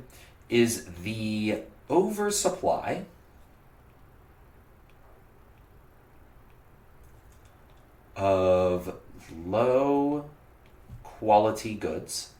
is the oversupply of low quality goods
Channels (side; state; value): both; identical; correlation 1.00